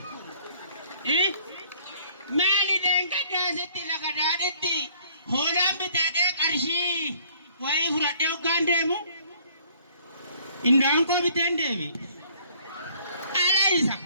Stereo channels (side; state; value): both; inverted; correlation -0.59